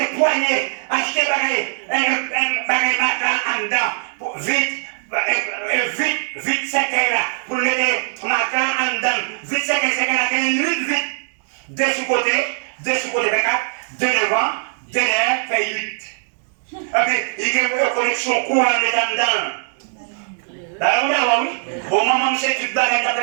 poigner, acheter un bagage en dedans, vite, c'est là, pour mettre matin en dedans, vite, c'est là, vite, deux sous côté, 24, deux devant. Denye fait 8. Et puis, il y a une connexion courant dedans. D'accord, oui. Bon, maman, c'est tout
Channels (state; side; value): silent; left; digital silence